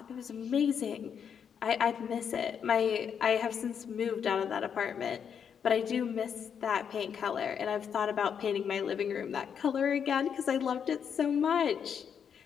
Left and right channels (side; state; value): right; quieter; 7.5 dB